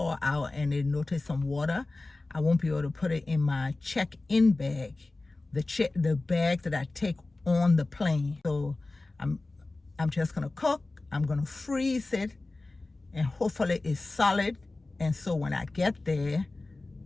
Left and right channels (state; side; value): quieter; right; 3.1 dB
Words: out and they notice some water, I won't be able to put it in my check-in bag, the bag that I take on the plane. So I'm just gonna cook, I'm gonna freeze it, and hopefully it's solid. And so when I get there,